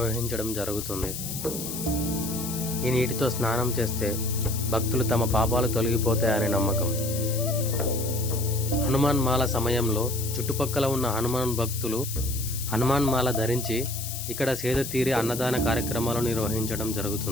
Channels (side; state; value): left; noise; hiss, 7 dB below the sound